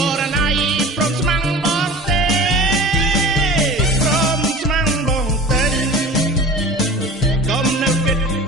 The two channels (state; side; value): normal; both; correlation 0.38